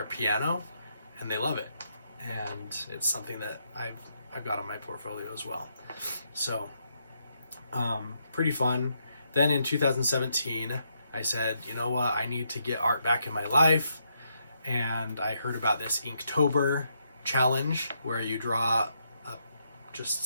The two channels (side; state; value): both; inverted; correlation -0.79